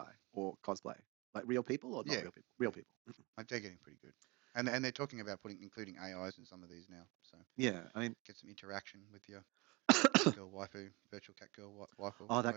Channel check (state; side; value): quieter; left; 25.5 dB